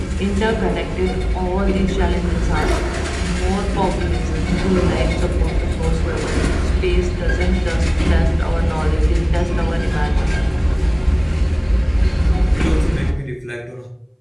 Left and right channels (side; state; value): both; identical; correlation 1.00